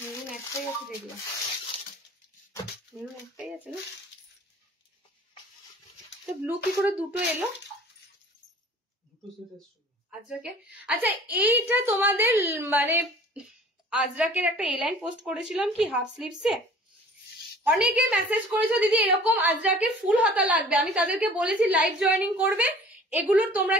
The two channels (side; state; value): both; normal; correlation 0.48